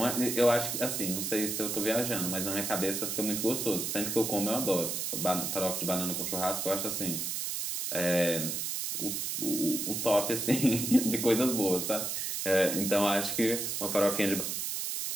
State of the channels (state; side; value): noise; right; hiss, 2 dB below the sound